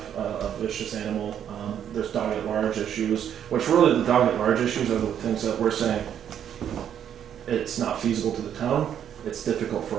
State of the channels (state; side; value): quieter; left; 9.4 dB